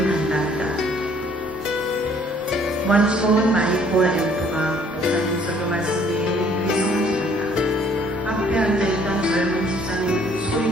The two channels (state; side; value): normal; both; correlation 0.60